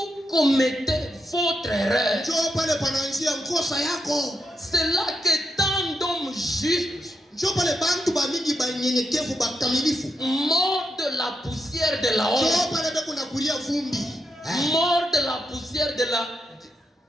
commettez votre erreur. Njoo pale panaanzia mkosa yako. C'est là que tant d'hommes justes, njoo pale bantu ba mingi ba nyenyekevu ba kamilifu, mort de la poussière de la honte. Njoo pale beko na kulia vumbi. Mort de la poussière de la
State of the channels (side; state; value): both; normal; correlation 0.83